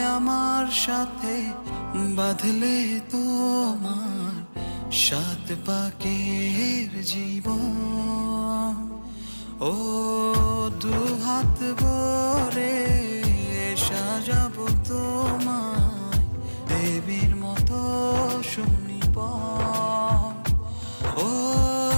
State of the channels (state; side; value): inverted; both; correlation -1.00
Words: আমার সাথে বাঁধলে তোমার সাত পাকের জীবন। ও দুহাত ভরে সাজাবো তোমায় দেবীর মতো সুনিপন। ও